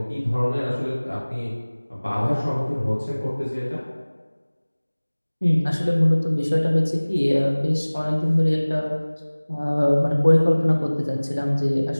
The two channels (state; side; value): inverted; both; correlation -1.00